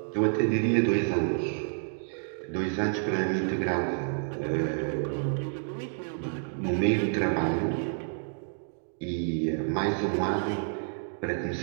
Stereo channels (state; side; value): silent; left; digital silence